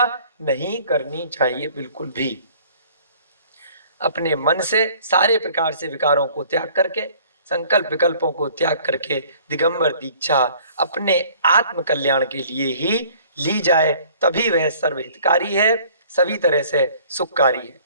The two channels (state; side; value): inverted; both; correlation -0.53